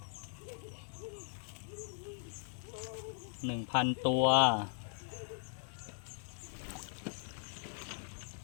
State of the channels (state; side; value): silent; right; digital silence